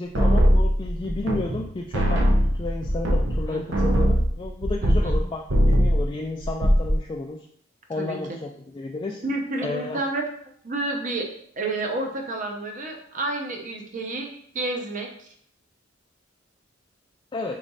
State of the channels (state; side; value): normal; both; correlation 0.82